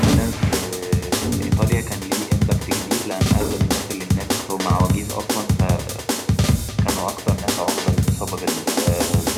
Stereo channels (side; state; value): both; identical; correlation 1.00